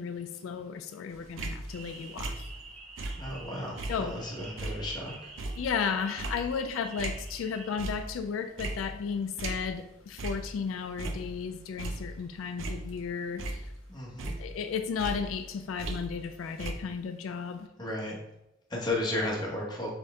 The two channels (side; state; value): right; quieter; 3.2 dB